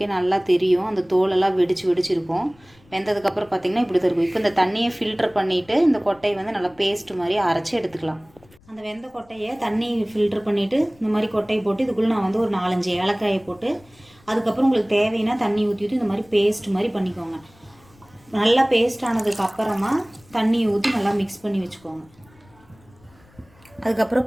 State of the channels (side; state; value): left; noise; rumble, 28 dB below the sound